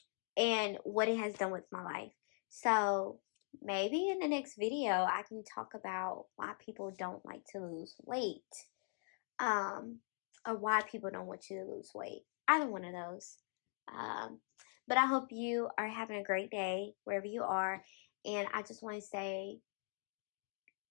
what it has done with my life. So maybe in the next video I can talk about why people don't like to lose weight. Or why people don't want you to lose weight. Either one of those. But I hope you are having a great day wherever you are. And I just want to say,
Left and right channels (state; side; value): silent; right; 50 dB below the other